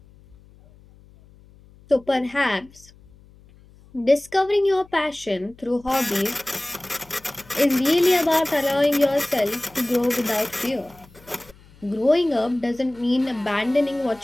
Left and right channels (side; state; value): left; noise; hum, 26 dB below the sound